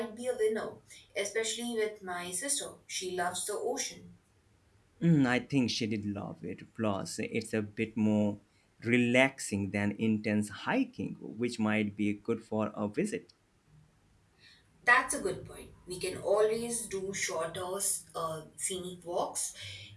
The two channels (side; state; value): both; identical; correlation 1.00